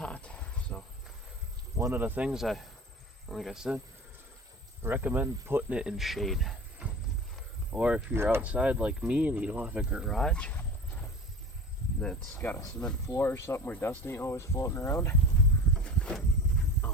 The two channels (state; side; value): normal; both; correlation 0.36